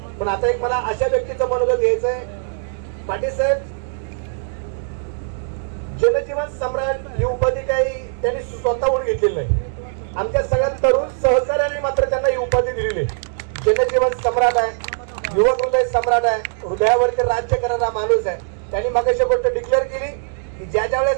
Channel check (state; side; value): silent; left; digital silence